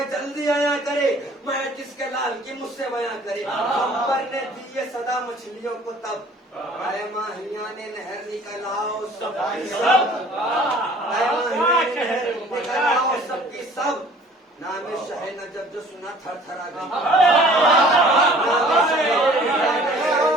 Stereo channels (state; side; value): normal; both; correlation 0.52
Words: جلدی آیا کرے، میں جس کے لال کی مجھ سے بیاں کرے، خمبر نے دی یہ صدا مچھلیوں کو تب، اے ماہیان نہر نکل آؤ سب کی سب، اے ماہیان نہر نکل آؤ سب کی سب، نام شاہ نجف جو سنا تھر تھرا گئی، نام شاہ